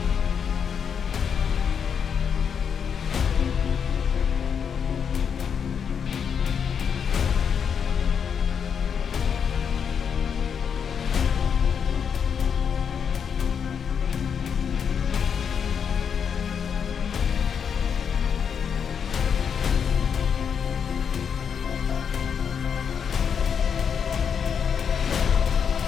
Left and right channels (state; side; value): quieter; right; 7.1 dB